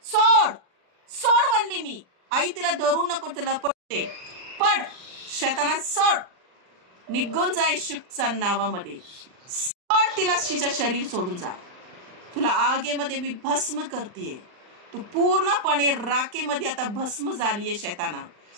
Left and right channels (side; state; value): left; late; 39 ms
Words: सोड, सोड म्हणली मी. आई तिला धरू नको, तिला पडते. पड शैताना, सोड, निघून जा येशूच्या नावामध्ये. सोड तिला. तिचं शरीर सोडून जा. तुला आगेमध्ये मी भस्म करतेय. तू पूर्णपणे राखेमध्ये आता भस्म झालीये. शैताना